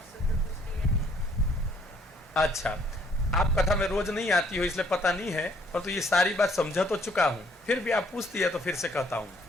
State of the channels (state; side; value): normal; both; correlation 0.64